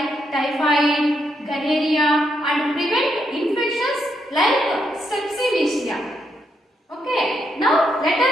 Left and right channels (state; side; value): normal; both; correlation 0.79